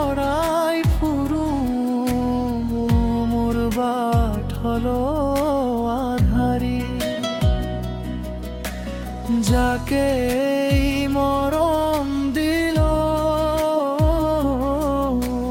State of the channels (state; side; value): identical; both; correlation 1.00